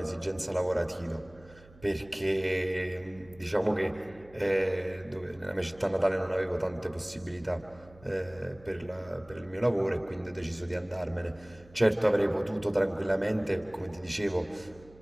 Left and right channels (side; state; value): right; noise; hum, 23 dB below the sound